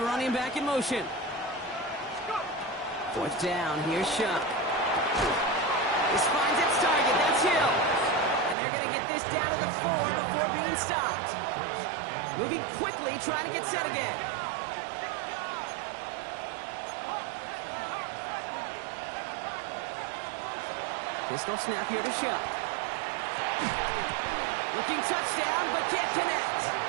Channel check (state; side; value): drops out; left; at 8.6 s